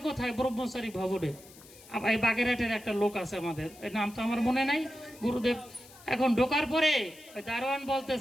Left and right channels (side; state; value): left; noise; hiss, 21 dB below the sound